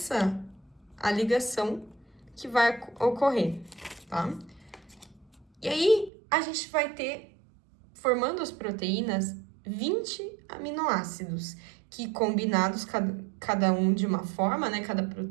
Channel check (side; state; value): left; drops out; at 6.1 s